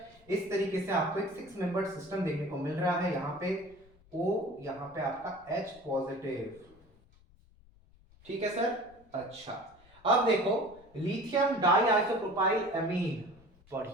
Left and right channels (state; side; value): noise; left; rumble, 27 dB below the sound